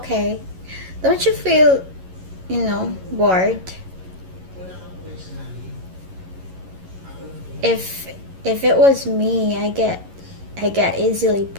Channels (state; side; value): late; left; 11 ms